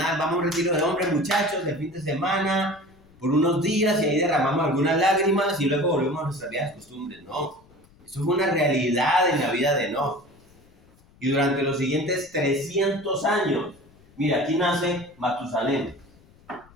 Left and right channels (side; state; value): left; noise; rumble, 28 dB below the sound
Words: Vamos a un retiro de hombres, muchachos, de fin de semana, por unos días y ahí derramamos algunas lágrimas y luego volvemos a nuestras viejas costumbres. No, eso fue una realidad en la vida de Enoc. Y durante los siguientes 300 años, mira, aquí nace Matusalén.